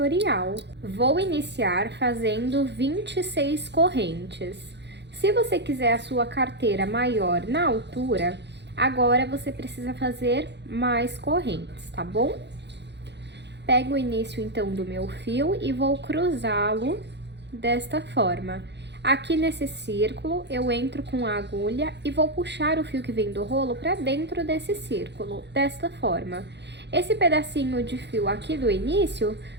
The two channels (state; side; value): late; left; 0.50 ms